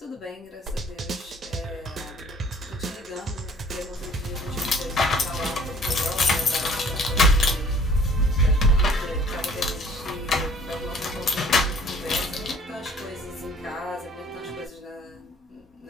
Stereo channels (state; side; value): normal; both; correlation 0.55